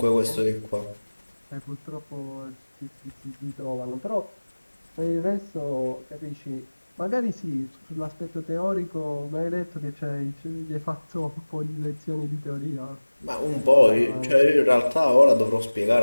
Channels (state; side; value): inverted; both; correlation -1.00